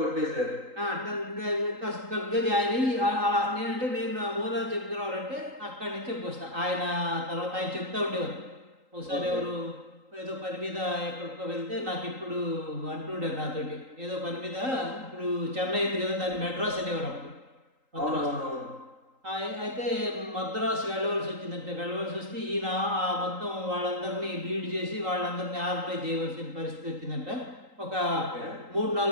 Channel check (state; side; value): late; left; 3.8 ms